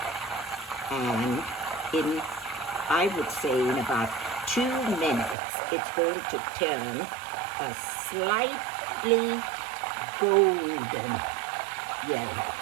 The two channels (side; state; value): left; drops out; at 5.4 s